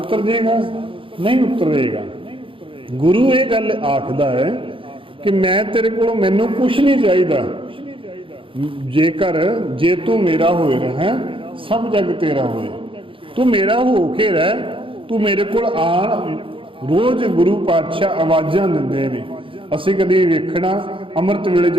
ਜਾਏਗਾ? ਨਹੀਂ ਉਤਰੇਗਾ। ਗੁਰੂ ਇਹ ਗੱਲ ਆਖਦਾ ਹੈ ਕਿ ਮੈਂ ਤੇਰੇ ਕੋਲੋਂ ਮੈਨੂੰ ਕੁਛ ਨਹੀਂ ਚਾਹੀਦਾ, ਜੇ ਤੂੰ ਮੇਰਾ ਹੋਏ ਰਹਿ ਸਭ ਜਗ ਤੇਰਾ ਹੋਏ। ਤੂੰ ਮੇਰਾ ਹੋ ਕੇ ਰਹਿ, ਤੂੰ ਮੇਰੇ ਕੋਲ ਆਣ। ਰੋਜ਼ ਗੁਰੂ ਪਾਤਸ਼ਾਹ ਆਵਾਜ਼ਾਂ ਦਿੰਦੇ ਨੇ। ਅਸੀਂ ਕਦੀ ਵੇਖਣਾ ਅੰਮ੍ਰਿਤ ਵੇਲੇ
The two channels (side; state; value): left; late; 0.25 ms